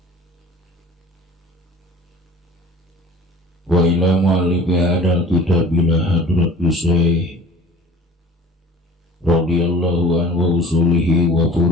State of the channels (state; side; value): normal; both; correlation 0.45